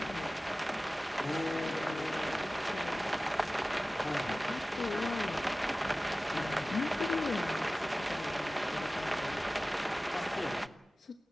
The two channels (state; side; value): normal; both; correlation 0.97